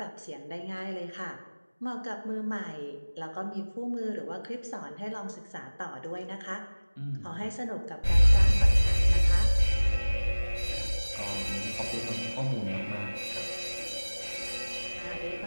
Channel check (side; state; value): both; inverted; correlation -1.00